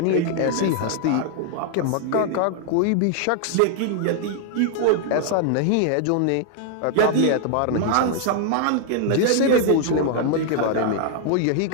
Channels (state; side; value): different; both; correlation 0.00